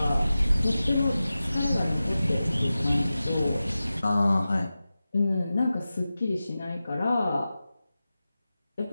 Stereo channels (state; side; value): inverted; both; correlation -0.95